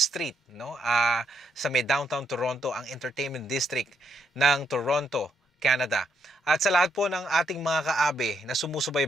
Street, no? Sa may downtown Toronto, ang entertainment district ng Toronto, Canada. At sa lahat po ng ating mga kaabe na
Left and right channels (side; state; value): both; normal; correlation 0.77